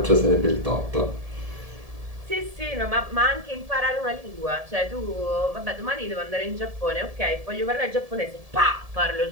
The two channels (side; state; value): left; late; 1.7 ms